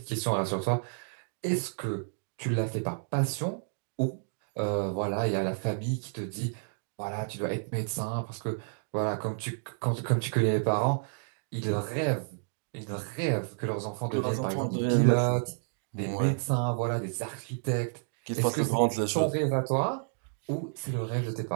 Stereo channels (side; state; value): left; silent; digital silence